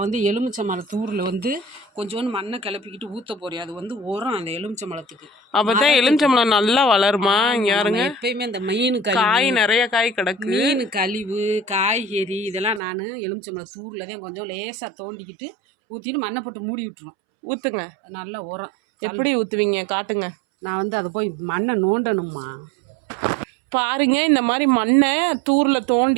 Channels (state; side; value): drops out; left; at 12.8 s